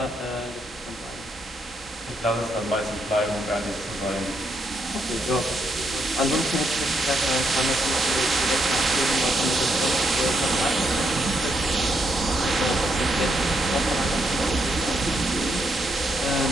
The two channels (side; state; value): both; normal; correlation 0.77